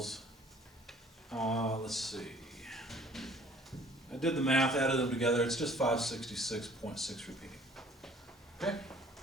let's see. I did the math, added them together. It's just 566.6 repeating. Okay?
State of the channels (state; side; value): normal; both; correlation 0.54